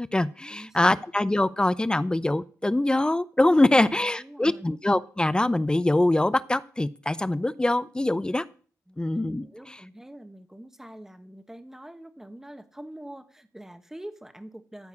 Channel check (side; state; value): both; normal; correlation 0.97